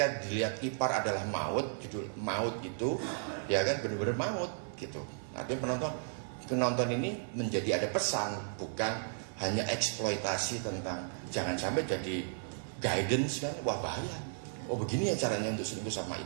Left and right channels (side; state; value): left; silent; digital silence